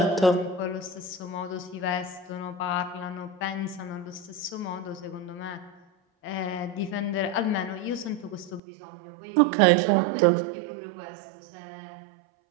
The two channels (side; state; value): left; drops out; at 8.6 s